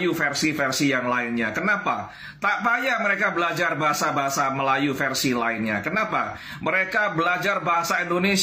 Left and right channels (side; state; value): both; identical; correlation 1.00